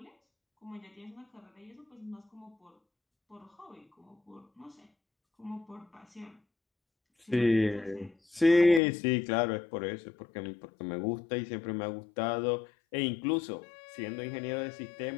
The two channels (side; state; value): right; drops out; at 8.8 s